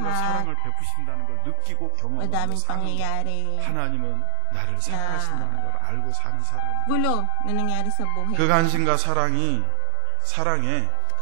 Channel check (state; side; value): different; both; correlation 0.00